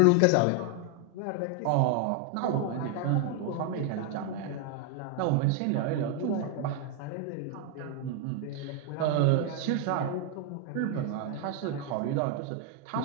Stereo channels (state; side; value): different; both; correlation 0.01